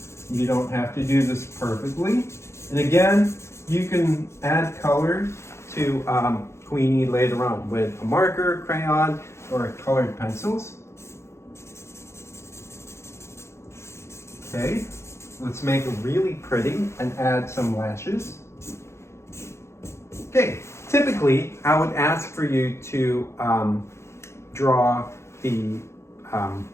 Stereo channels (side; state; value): right; late; 0.13 ms